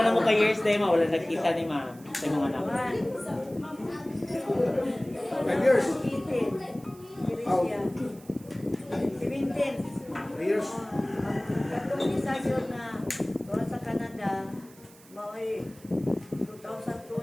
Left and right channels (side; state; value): right; noise; hiss, 24 dB below the sound